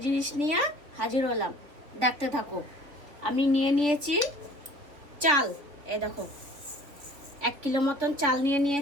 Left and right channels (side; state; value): left; late; 3.5 ms